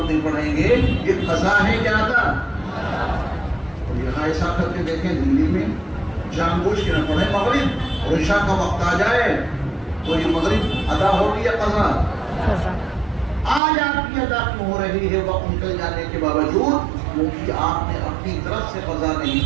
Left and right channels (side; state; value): left; drops out; at 13.6 s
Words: میں پڑھیں گے یہ قضا ہے یا ادا؟ اور یہاں ایسا کر کے دیکھیں دلی میں جان بوجھ کے نہ پڑھیں مغرب اور عشاء کا وقت آ جائے تو یہ مغرب ادا ہوگی یا قضا؟ آج آپ کی ادا کیوں ہو رہی ہے وقت نکل جانے کے باوجود؟ کیونکہ آپ نے اپنی طرف سے قضا نہیں